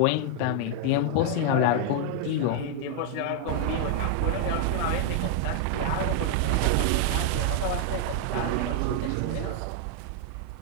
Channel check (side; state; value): both; different; correlation 0.00